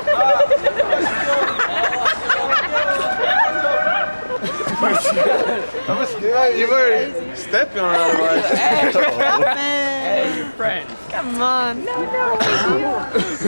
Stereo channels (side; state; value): both; inverted; correlation -1.00